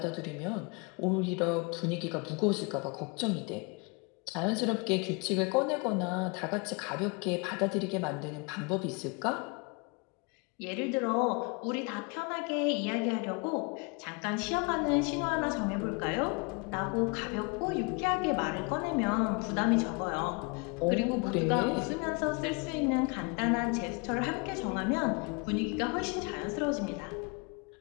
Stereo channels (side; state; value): right; quieter; 31.2 dB